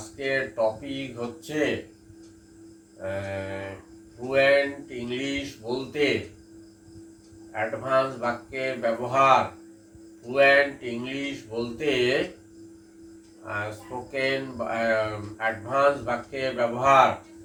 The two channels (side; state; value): both; identical; correlation 1.00